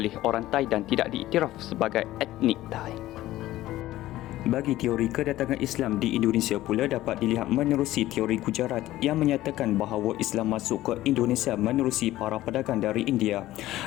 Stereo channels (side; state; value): right; quieter; 15.5 dB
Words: orang Thai dan tidak diiktiraf sebagai etnik Thai. Bagi teori kedatangan Islam di Indonesia pula dapat dilihat menerusi teori Gujarat yang menyatakan bahawa Islam masuk ke Indonesia menerusi para pedagang dari India.